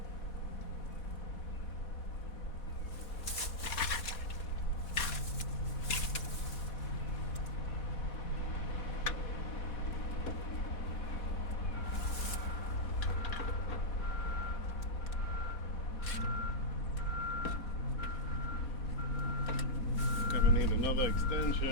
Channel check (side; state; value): right; late; 4.2 ms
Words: Gonna need another